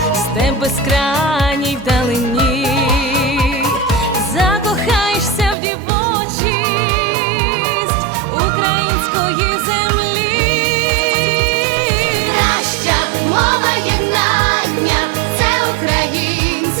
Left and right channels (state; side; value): drops out; left; at 5.6 s